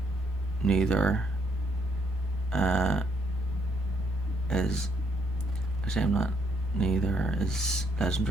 neither. Neither is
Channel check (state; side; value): normal; both; correlation 0.72